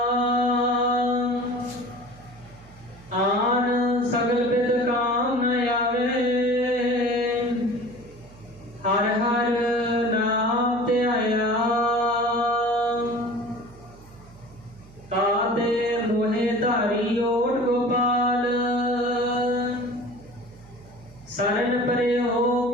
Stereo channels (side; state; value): right; noise; hum, 22 dB below the sound